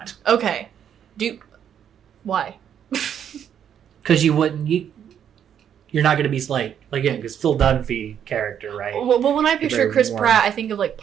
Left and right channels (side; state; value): left; quieter; 9.0 dB